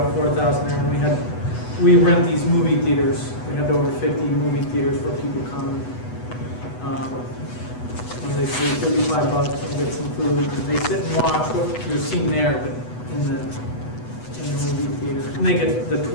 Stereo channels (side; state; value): right; late; 8.1 ms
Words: 4,000 there, and we rent these movie theaters. We had over 50 movie theaters where people come. When they pay $35 and get some food, they sit and watch what you're seeing there, but in the movie theater. And they get the